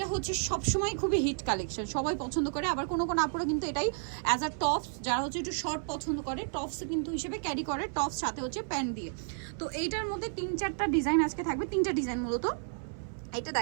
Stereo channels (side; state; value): left; silent; 57 dB below the other